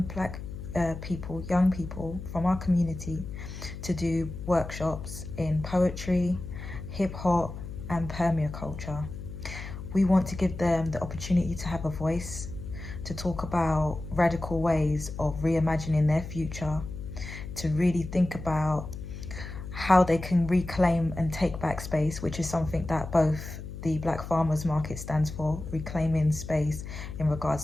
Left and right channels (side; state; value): left; noise; hum, 9 dB below the sound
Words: people from our community to do workshops in poetry, hip hop and permaculture. We want to give them the opportunity to have a voice, to talk about radical ways of reimagining their future, to really think about how they can reclaim and take back space, which is something that both the Black Farmers Market stands for, reclaiming space in regards